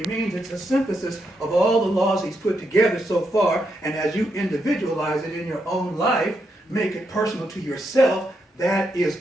means it's a synthesis of all the laws he's put together so far, and as you individualize it in your own life, make it personal to yourself, that is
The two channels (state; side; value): normal; both; correlation 0.81